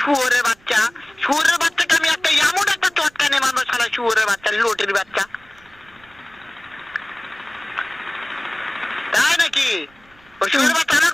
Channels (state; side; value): noise; right; rumble, 29 dB below the sound